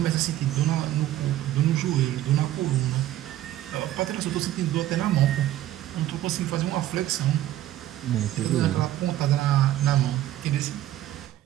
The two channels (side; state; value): left; quieter; 13.5 dB